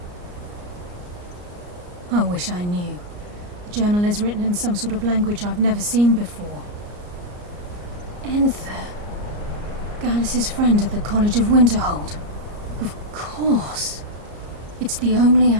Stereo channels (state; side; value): late; left; 34 ms